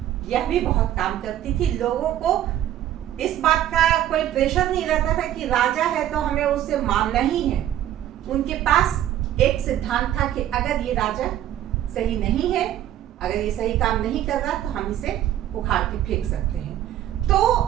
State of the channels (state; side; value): quieter; left; 12.1 dB